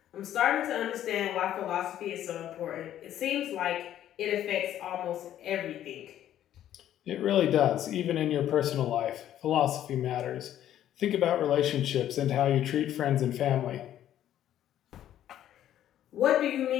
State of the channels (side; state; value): right; quieter; 11.6 dB